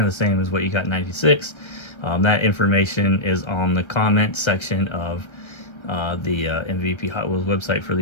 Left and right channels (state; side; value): late; right; 1.3 ms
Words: the same as what you got in 96. That information is on the comment section of the MVP Hot Wheels website for